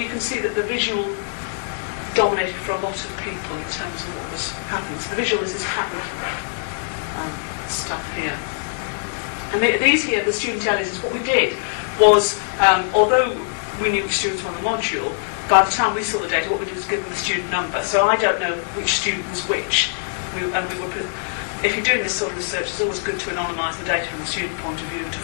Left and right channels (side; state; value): right; silent; digital silence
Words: can see that the visual dominated for a lot of people in terms of what was happening. So the visual is this pattern stuff here. And these here, the student analysis, what we did was, although we knew which students were on the module, by the time we saw the data, what we did was give them the student number. So I don't know which student was which. If you're doing this sort of research, it's always good to anonymise the data from the student point of view and to